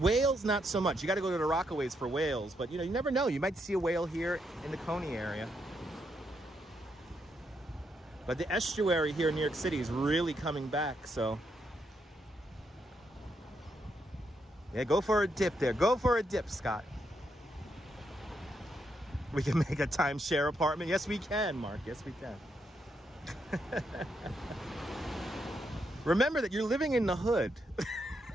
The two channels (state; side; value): normal; both; correlation 0.79